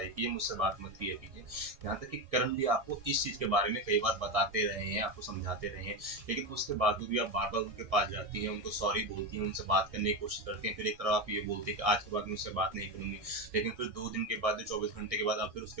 मुझसे बात मत किया कीजिए। यहाँ तक कि करण भी आपको इस चीज के बारे में कई बार बताते रहे हैं, आपको समझाते रहे हैं, लेकिन उसके बावजूद भी आप बार बार उनके पास जाती हैं, उनको सॉरी बोलती हैं, उनसे बात करने की कोशिश करती हैं। फिर एक तरफ आप ये बोलते हैं कि आज के बाद मुझसे बात नहीं करूंगी, लेकिन फिर 2 दिन के बाद, 24 घंटे के बाद आप फिर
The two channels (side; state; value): left; late; 1.6 ms